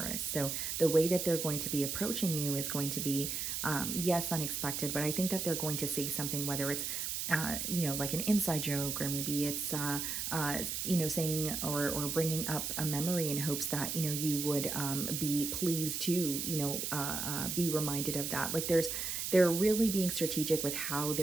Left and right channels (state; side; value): noise; right; hiss, 2 dB below the sound